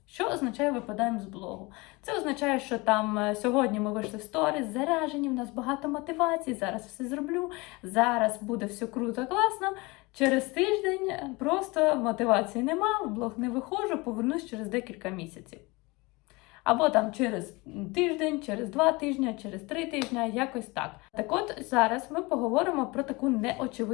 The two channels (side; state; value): right; quieter; 24.7 dB